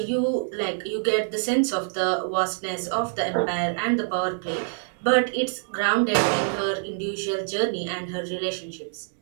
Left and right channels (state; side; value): silent; left; digital silence